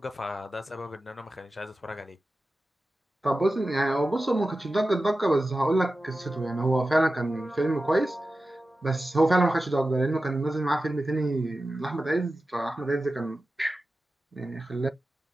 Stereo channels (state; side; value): normal; both; correlation 0.94